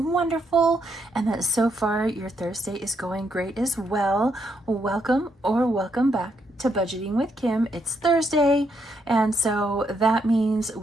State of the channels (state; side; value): normal; both; correlation 0.76